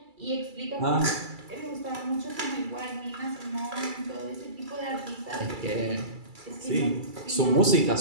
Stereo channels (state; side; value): late; left; 2.3 ms